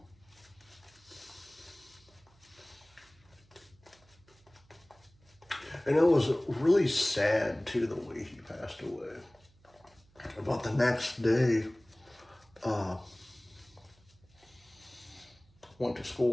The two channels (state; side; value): noise; right; hum, 29 dB below the sound